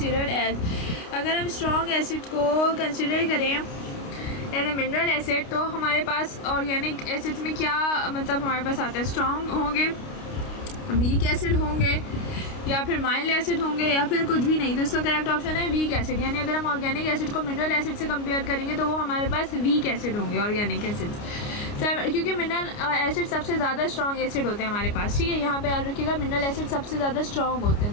as, अगर हम स्ट्रॉन्ग एसिड को कंसिडर करें एज ए मिनरल एसिड तो हमारे पास ऑर्गेनिक एसिड्स में क्या मतलब हमारे पास आता है, स्ट्रॉन्ग होंगे, वीक एसिड होंगे या फिर माइल्ड एसिड होंगे या फिर कुछ भी नहीं। तो इसका करेक्ट ऑप्शन है वीक एसिड, यानी अगर हम ऑर्गेनिक एसिड को मिनरल एसिड से कंपेयर करेंगे तो वो हमारे पास वीक एसिड होंगे ऑर्गेनिक एसिड्स, क्योंकि मिनरल एसिड सबसे ज़्यादा स्ट्रॉन्ग एसिड होते हैं हमारे पास। ठीक है, यहाँ पे याद रखिएगा मिनरल एसिड सबसे ज़्यादा स्ट्रॉन्ग होते हैं,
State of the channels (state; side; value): late; right; 29 ms